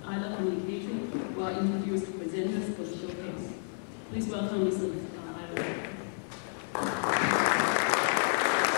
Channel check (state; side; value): silent; right; digital silence